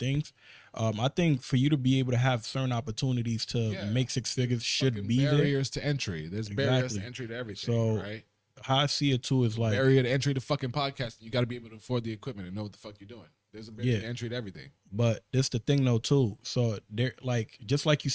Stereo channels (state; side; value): identical; both; correlation 1.00